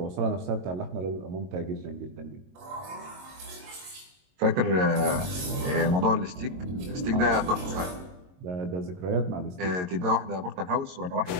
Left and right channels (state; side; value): late; left; 22 ms